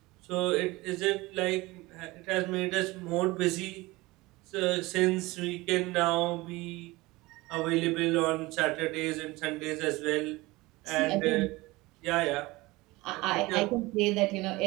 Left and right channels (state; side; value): quieter; left; 21.3 dB